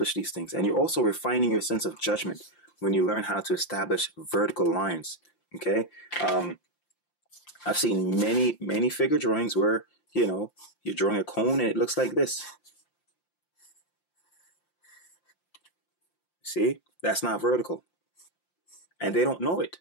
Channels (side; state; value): right; late; 5.8 ms